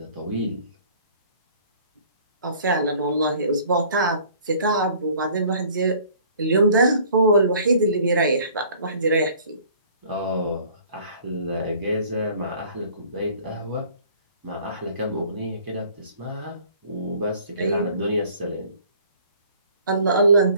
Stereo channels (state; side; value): inverted; both; correlation -0.53